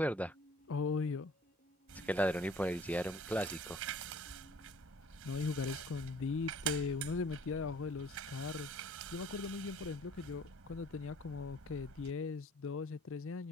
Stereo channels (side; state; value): both; normal; correlation 0.53